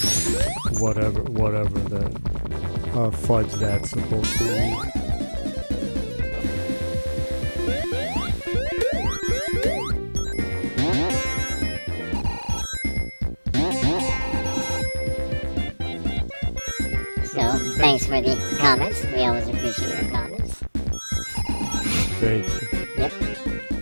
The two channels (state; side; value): inverted; both; correlation -1.00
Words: Whatever that fudge that's supposed to be. So, thanks for the comments. We always appreciate your comments. Thank you. Yep.